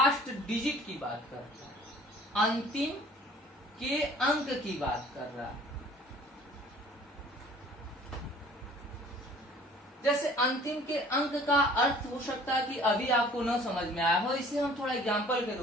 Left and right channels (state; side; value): normal; both; correlation 0.50